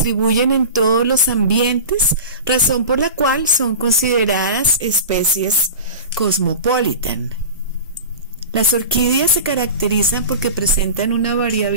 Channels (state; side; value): inverted; both; correlation -0.32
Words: en todos los ambientes, razón por la cual son consideradas especies cosmopolitan. Las orquídeas se caracterizan porque presentan una